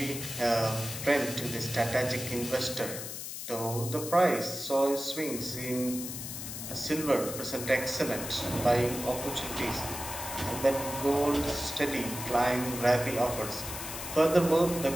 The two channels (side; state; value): left; noise; hiss, 7 dB below the sound